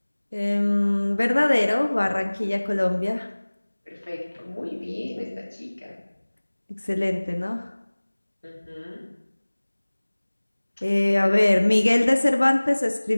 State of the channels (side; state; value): both; inverted; correlation -1.00